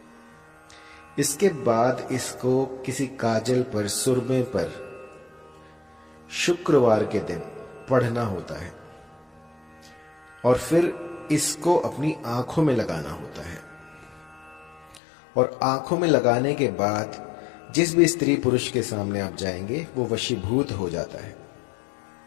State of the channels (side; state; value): right; drops out; at 15.0 s